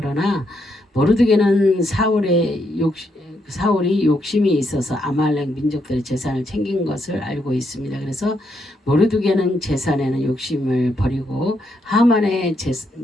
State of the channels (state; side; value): normal; both; correlation 0.78